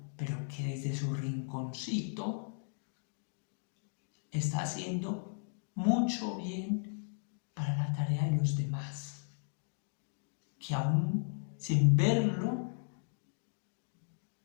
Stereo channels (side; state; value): right; silent; digital silence